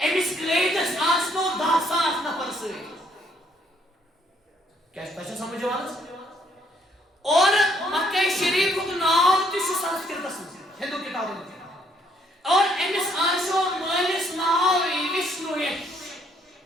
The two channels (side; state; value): both; normal; correlation 0.68